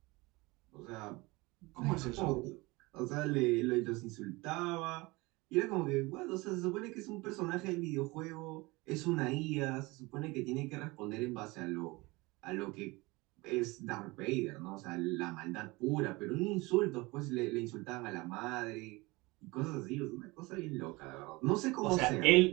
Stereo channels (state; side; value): quieter; left; 23.4 dB